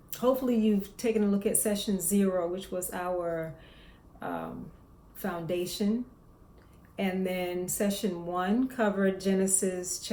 Hopefully, you've taken a look at session 0, which was our foundation. And then session 1 covered Genesis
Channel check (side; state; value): both; identical; correlation 1.00